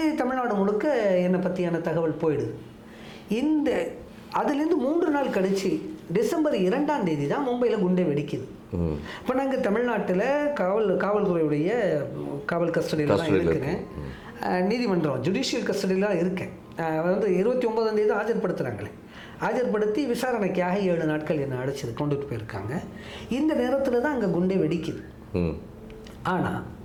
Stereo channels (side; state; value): both; identical; correlation 1.00